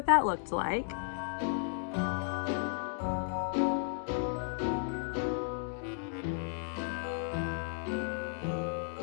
that looked like.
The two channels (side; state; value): right; silent; 55 dB below the other